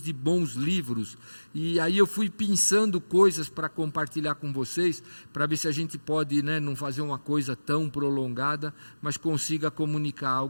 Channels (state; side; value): inverted; both; correlation -1.00